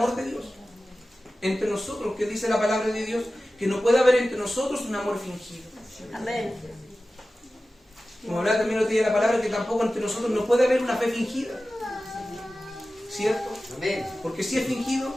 de Dios entre nosotros, que dice la palabra de Dios, que no puede haber entre nosotros un amor fingido. Amén. Como hablaba también el otro día de la palabra, que tampoco entre nosotros no puede haber una fe fingida, ¿cierto? Amén. Porque si es fingido,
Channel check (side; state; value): both; normal; correlation 0.95